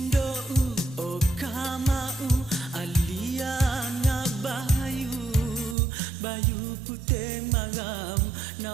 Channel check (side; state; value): left; drops out; at 5.8 s